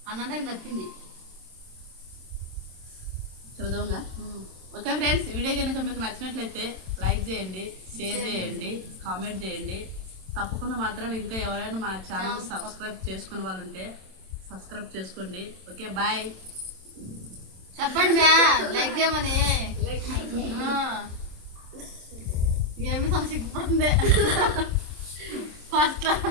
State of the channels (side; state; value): left; late; 27 ms